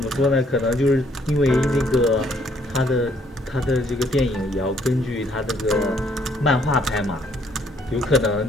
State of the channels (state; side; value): normal; both; correlation 0.66